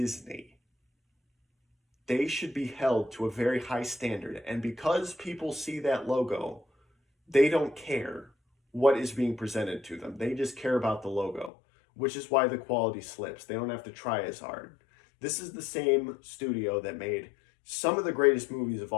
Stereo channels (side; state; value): right; drops out; at 11.5 s